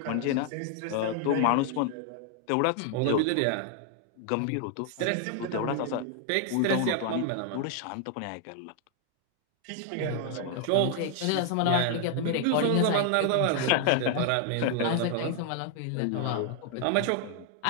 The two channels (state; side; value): different; both; correlation 0.00